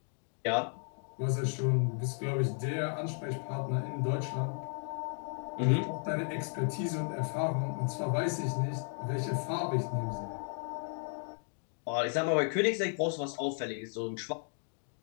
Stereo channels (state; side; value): silent; right; 55 dB below the other